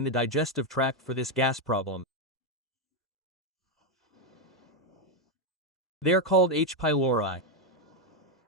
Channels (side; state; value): both; normal; correlation 0.04